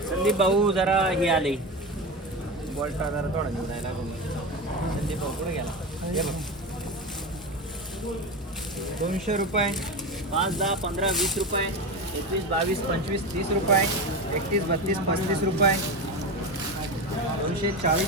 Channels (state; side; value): normal; both; correlation 0.21